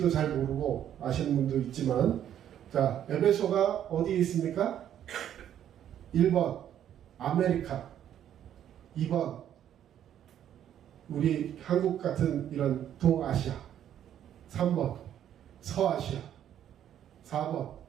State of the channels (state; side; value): quieter; left; 10.4 dB